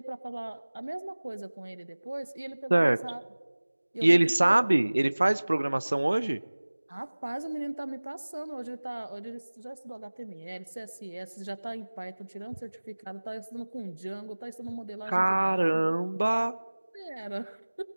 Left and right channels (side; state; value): both; inverted; correlation -1.00